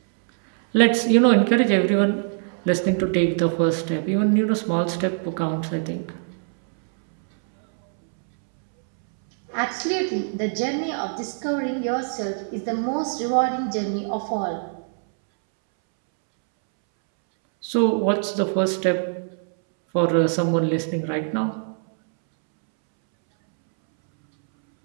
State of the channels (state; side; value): silent; left; 64 dB below the other